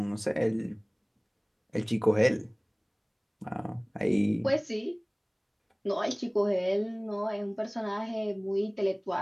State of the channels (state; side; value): identical; both; correlation 1.00